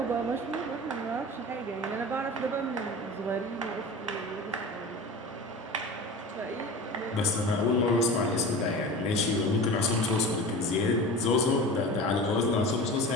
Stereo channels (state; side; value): normal; both; correlation 0.34